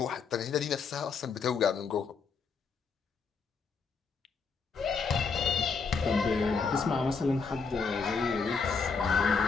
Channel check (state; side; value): quieter; right; 5.2 dB